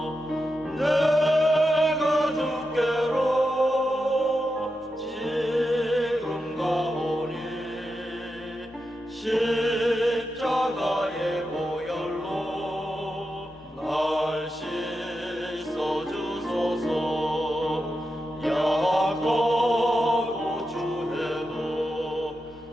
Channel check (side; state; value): both; normal; correlation 0.88